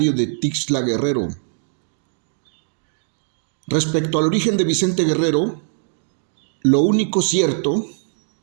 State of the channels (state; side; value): silent; left; digital silence